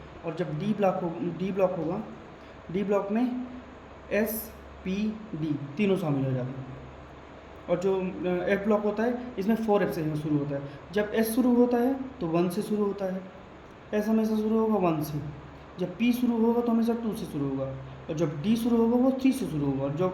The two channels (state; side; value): identical; both; correlation 1.00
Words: और जब डी ब्लॉक होगा, डी ब्लॉक में एस पी डी तीनों शामिल हो जाते हैं। और जो एफ ब्लॉक होता है इसमें 4f से शुरू होता है। जब एस शुरू होता है तो 1 से शुरू होता है, एस हमेशा शुरू होगा 1 से। जब पी शुरू होगा तो हमेशा 2 से शुरू होगा, और जब डी शुरू होगा वो 3 से शुरू होगा, और